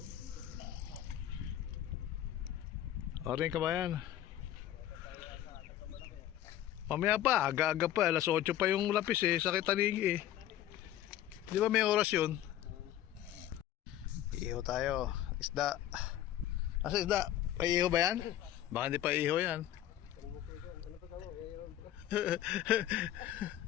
Oring kabayan. Mamaya pa, aga-aga pa, alas 8 pa yung lapis eh, sakit tanigi eh. Di ba may oras yun? Iihaw tayo, isda. Asa isda? Paiihaw ba yan? Baka hindi pa iihaw yan.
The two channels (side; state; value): right; quieter; 12.3 dB